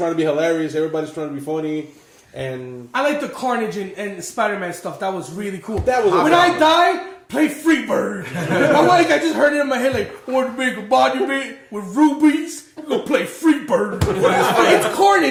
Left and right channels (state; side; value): identical; both; correlation 1.00